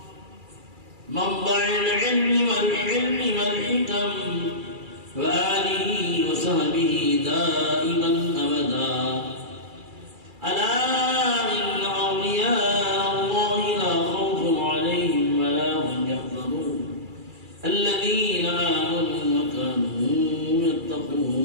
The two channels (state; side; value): late; left; 2.3 ms